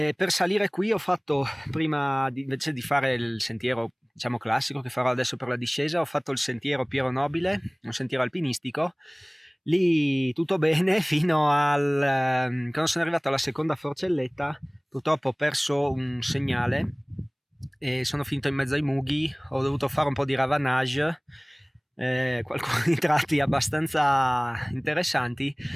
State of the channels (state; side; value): identical; both; correlation 1.00